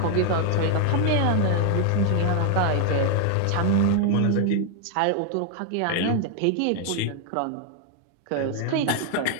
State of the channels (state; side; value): different; both; correlation 0.00